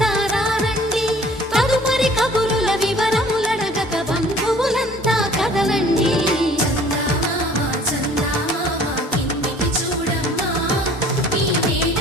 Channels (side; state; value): both; normal; correlation 0.52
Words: రారండి తదుపరి కబురుల వివరములడగక బంధువులంతా కదలండి చందమామ చందమామ కిందికి చూడమ్మా ఈ నేల